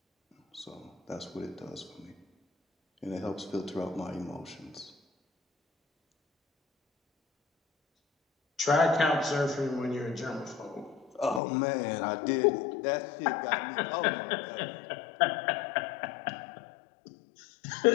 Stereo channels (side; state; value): right; drops out; at 11.4 s